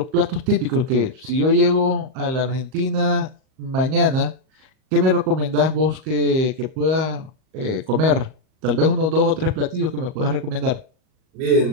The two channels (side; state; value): left; late; 38 ms